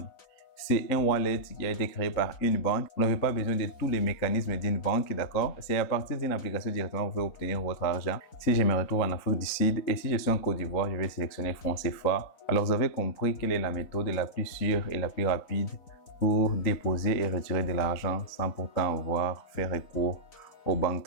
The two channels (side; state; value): right; late; 3.9 ms